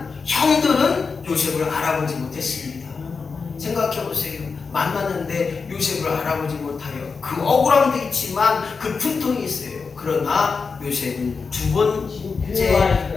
형들은 요셉을 알아보지 못했습니다. 생각해 보세요. 만났는데 요셉을 알아보지 못하여 그 억울함도 있지만 그 분통이 있어요. 그러나 요셉은 두 번째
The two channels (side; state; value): right; quieter; 5.0 dB